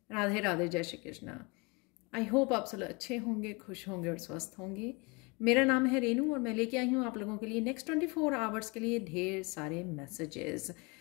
Radhe Radhe, जय Shri Krishna. I hope आप सब अच्छे होंगे, खुश होंगे और स्वस्थ होंगे। मेरा नाम है रेनू और मैं लेके आई हूँ आप लोगों के लिए नेक्स्ट 24 आवर्स के लिए ढेर सारे मैसेजेस।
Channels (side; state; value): right; quieter; 28.7 dB